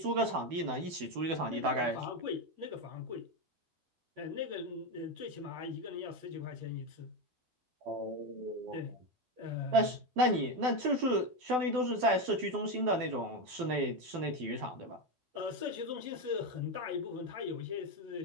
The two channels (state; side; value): late; left; 12 ms